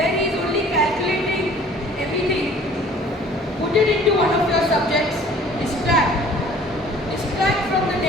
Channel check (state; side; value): normal; both; correlation 0.51